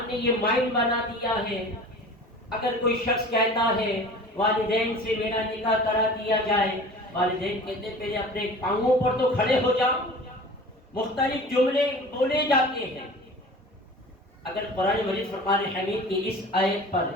نے یہ مائنڈ بنا دیا ہے، اگر کوئی شخص کہتا ہے والدین سے میرا نکاح کرا دیا جائے، والدین کہتے پہلے اپنے پاؤں پر تو کھڑے ہو جاؤ، مختلف جملے بولے جاتے ہیں۔ اگر قرآن مجید فرقان حمید کی اس آیت پر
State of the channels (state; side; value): normal; both; correlation 0.41